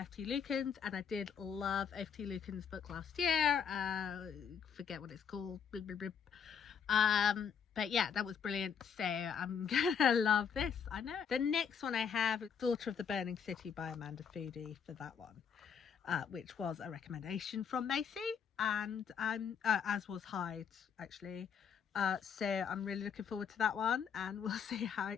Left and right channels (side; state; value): right; quieter; 7.1 dB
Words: F.T. Lukens, and I did love F.T. Lukens' book last year. Forget what it's called. But yeah, that was brilliant, so I'm gonna love this, I know. The next one I have is Daughter of the Burning City by Amanda Foody for that one, which was a recommendation from Macy, and as was Hyde actually. So I'm really looking forward to that one, and we'll see how